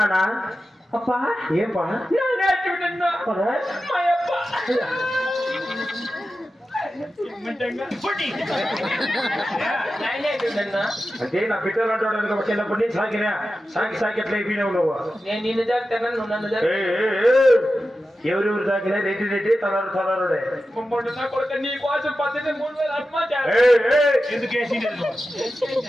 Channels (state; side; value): normal; both; correlation 0.92